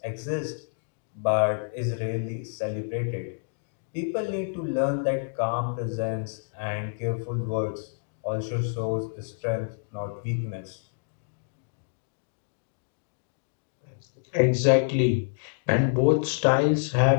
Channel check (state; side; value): silent; right; digital silence